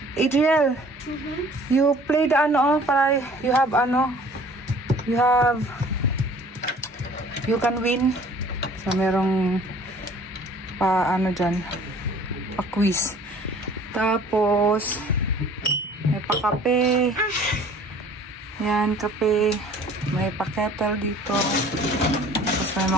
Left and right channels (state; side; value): normal; both; correlation 0.51